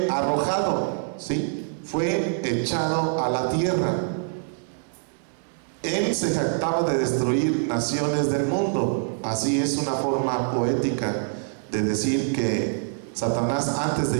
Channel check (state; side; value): silent; left; digital silence